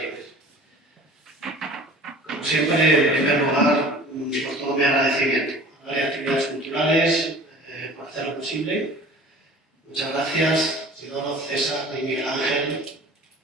Como siempre, en primer lugar, por todo mi agradecimiento a las actividades culturales, por hacer lo posible. Muchas gracias, Isidoro, César y Miguel Ángel,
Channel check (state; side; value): normal; both; correlation 0.44